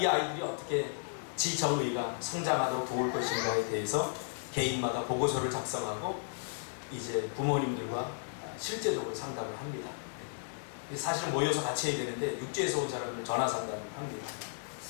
아이들이 어떻게 지정의가 성장하도록 도울 것인가에 대해서 개인마다 보고서를 작성하고 이제 부모님들과 실제적으로 상담을 합니다. 사실은 모여서 같이 해야 되는데 육지에서 온 사람을 전화 상담을 합니다.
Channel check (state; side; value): silent; right; digital silence